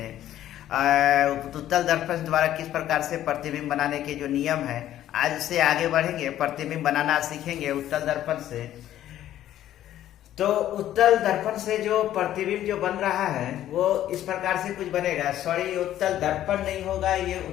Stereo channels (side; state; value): right; quieter; 12.4 dB